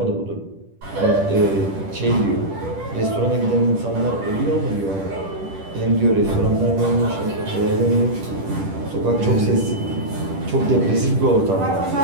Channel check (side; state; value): left; late; 10 ms